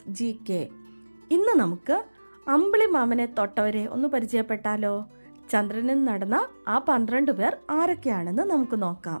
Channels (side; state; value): both; inverted; correlation -1.00